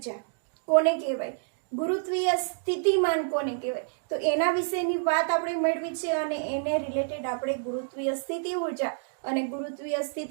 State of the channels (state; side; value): silent; left; digital silence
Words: કોને કહેવાય, ગુરુત્વીય સ્થિતિમાન કોને કહેવાય, તો એના વિશેની વાત આપણે મેળવી છે અને એને રિલેટેડ આપણે ગુરુત્વીય સ્થિતિ ઊર્જા અને ગુરુત્વીય